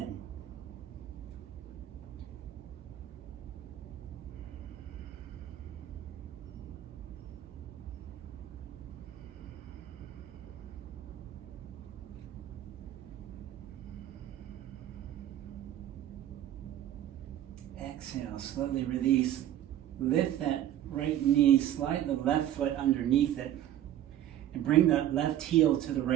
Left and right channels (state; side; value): quieter; left; 12.0 dB